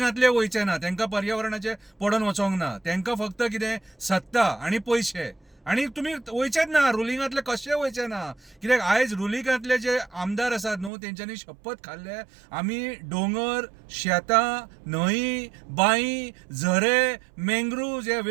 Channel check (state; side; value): drops out; left; at 10.9 s